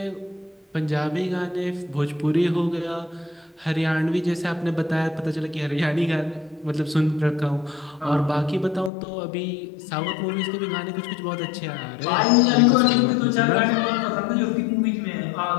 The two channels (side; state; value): right; drops out; at 8.9 s